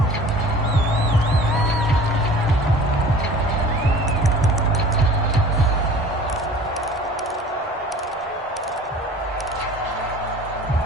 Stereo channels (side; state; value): both; normal; correlation 0.44